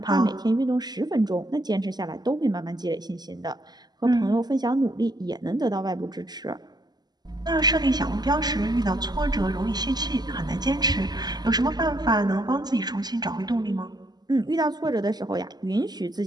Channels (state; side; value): late; left; 0.20 ms